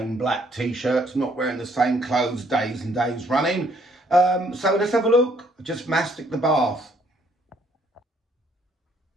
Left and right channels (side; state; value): both; normal; correlation 0.66